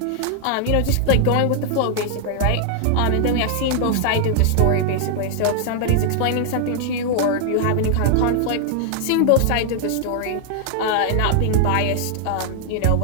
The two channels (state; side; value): different; both; correlation 0.00